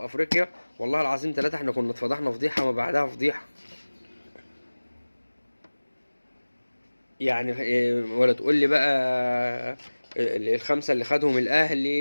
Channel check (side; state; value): both; inverted; correlation -1.00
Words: افريقيا والله العظيم 3 احنا كنا اتفضحنا فضيحة ما بعدها فضيحة. يعني ولا تقول لي بقى الخمسة اللي خدهم